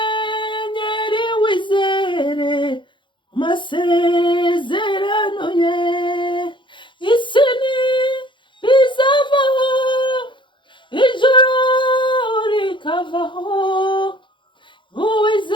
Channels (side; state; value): right; late; 0.23 ms